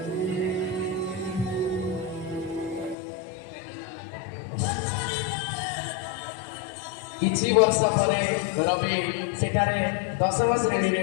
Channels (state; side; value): drops out; right; at 3.0 s